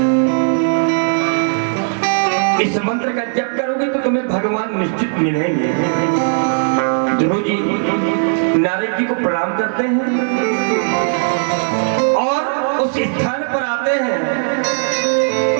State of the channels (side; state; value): left; silent; digital silence